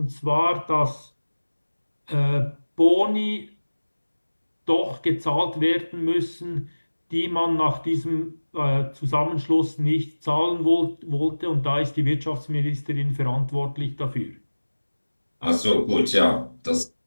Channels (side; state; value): both; inverted; correlation -1.00